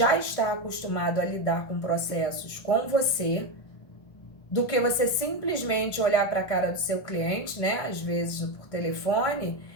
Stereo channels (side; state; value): right; late; 1.3 ms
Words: está acostumado a lidar com processos com você, do que você simplesmente olhar para a cara do seu cliente, né, às vezes por telefone,